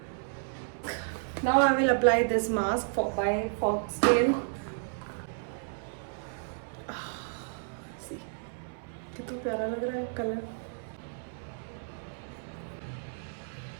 Now I will apply this mask by Foxtale. कितना प्यारा लग रहा है कलर।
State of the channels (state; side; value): silent; left; 57 dB below the other